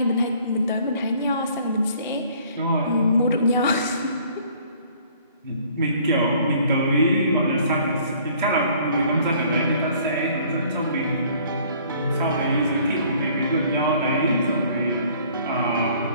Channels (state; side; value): inverted; both; correlation -0.57